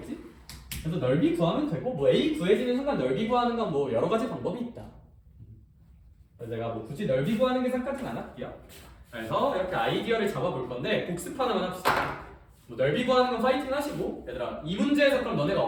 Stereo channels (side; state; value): both; identical; correlation 1.00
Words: 그래서 넓이 구하면 되고 뭐 A 구해지는 순간 넓이 구하는 건 뭐 여러 가지 방법이 있다. 그래서 제가 뭐 굳이 넓이 구하는 계산까지는 안 할게요. 그래서 이렇게 아이디어를 잡아볼 건데 복습 하나만 합시다. 뭐 넓이 구하는 건 파이팅 하시고 얘들아 이 문제에서 그럼 너네가